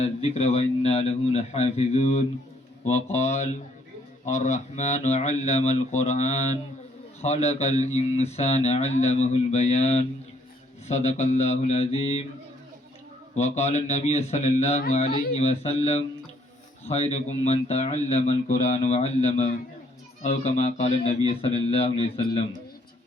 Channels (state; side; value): normal; both; correlation 0.66